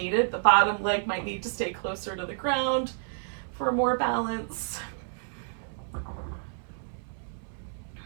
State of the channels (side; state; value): left; silent; 58 dB below the other